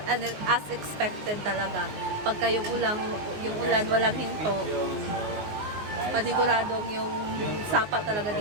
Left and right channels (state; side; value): late; left; 19 ms